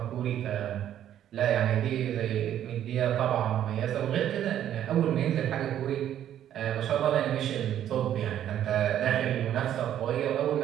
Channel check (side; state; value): left; quieter; 10.9 dB